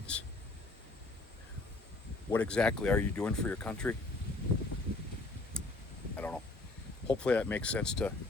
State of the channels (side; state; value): right; quieter; 3.1 dB